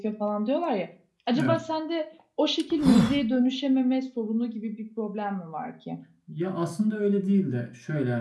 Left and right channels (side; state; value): both; identical; correlation 1.00